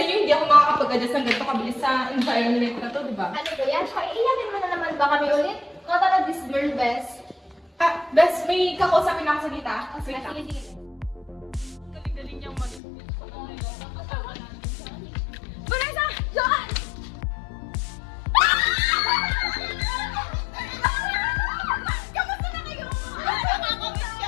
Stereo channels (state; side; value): drops out; right; at 12.8 s